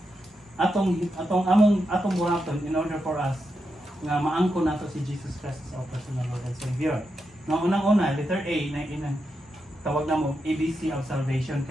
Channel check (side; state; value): both; normal; correlation 0.86